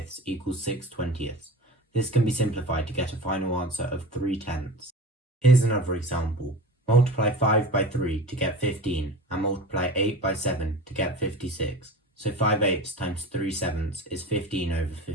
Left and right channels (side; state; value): both; normal; correlation 0.35